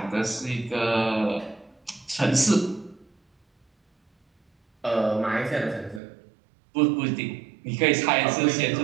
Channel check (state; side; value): drops out; left; at 6.0 s